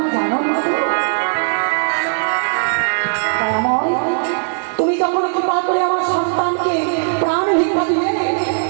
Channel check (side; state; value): left; silent; digital silence